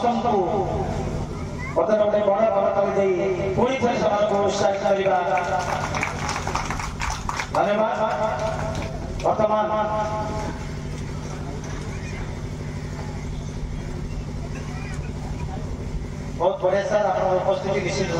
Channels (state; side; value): identical; both; correlation 1.00